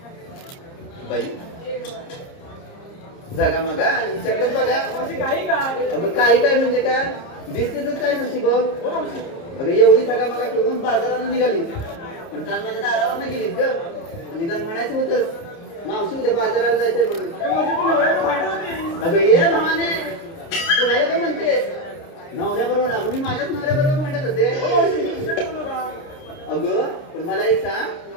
बाई जगा मगा आणि विचारत बघा. मावशी काही काय अगं काही काय म्हणजे काय दिसते तर काय नसती बघ. हो मावशी अगं एवढी सगळा मगा ठेवून बाजाराला निघाली, पण काल माझ्या दारावर नाही गेलीस ग. निदान म्हणायचं होतंच मावशी उद्या बाजाराला जायचंय म्हणून. मावशी तू नवऱ्याला भांडत होती. अगं ये भावाने, तू राहिला काय म्हणते? नवऱ्याबरोबर अगं मी माझ्याच नवऱ्याबरोबर भांडत होते. हो मावशी मी दुसरं बोलू का? अगं पण मला एक सांग,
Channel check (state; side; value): late; right; 29 ms